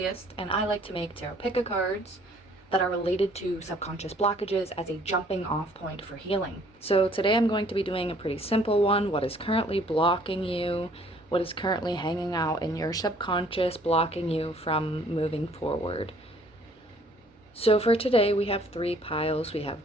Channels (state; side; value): normal; both; correlation 0.59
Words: and I like to make tarot pick cards that are related to subconscious blockages as a jumping off point for healing. So today I'm going to be doing a pretty simple one. What is currently blocking you? What is currently hanging out in your subconscious, blocking you from moving forward? So for today we have 3 piles. We have